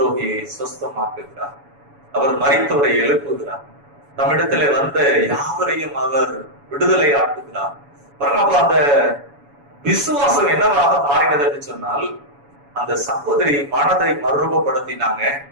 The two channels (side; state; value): left; late; 7.1 ms